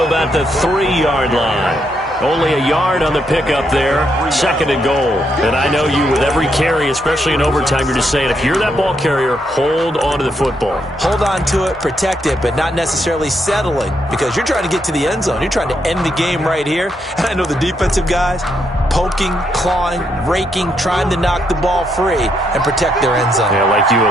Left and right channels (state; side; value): normal; both; correlation 0.78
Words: about the 3-yard line. Only a yard on the pickup there. 2nd and goal. And I know you, with every carry, especially in overtime, you're just saying, if you're that ball carrier, hold on to the football. Hold on to it, protect it, but not necessarily settling, because you're trying to get to the end zone. You're trying to end the game right here. And I know the defensive guys poking, clawing, raking, trying to knock the ball free and protect their end zone. Yeah, like you